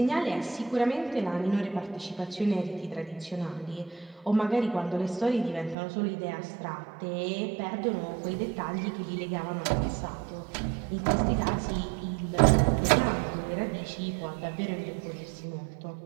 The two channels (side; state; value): left; drops out; at 5.8 s